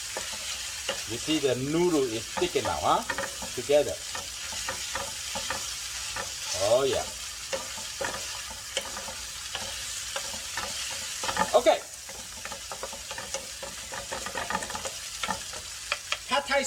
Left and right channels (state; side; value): identical; both; correlation 1.00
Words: You see the noodle is sticking now, huh? Together. Oh yeah. Okay. Pad thai